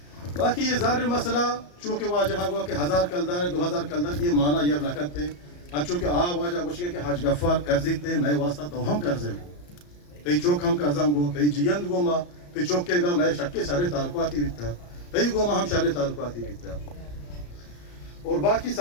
باقی یہ ظاہر مسئلہ چونکہ واجہ ہوا کہ 1000 کلدار ہے 2000 کلدار یہ معنی یہ رکھت ہے چونکہ واجہ گوشگے کہ حج غفار قرضی تے میں واسطہ تو ہم قرضے ہوں تی چوک ہم قرضاں گو تی جیند گو ما تی چوک کے گا میں شکے سارے تعلقاتی بیتا تی گو ما ہم سارے تعلقاتی بیتا اور باقی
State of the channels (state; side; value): late; right; 34 ms